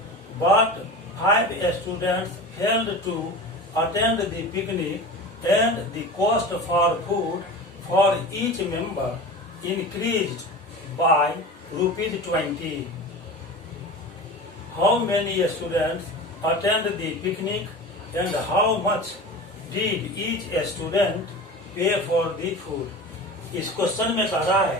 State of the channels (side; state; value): both; normal; correlation 0.33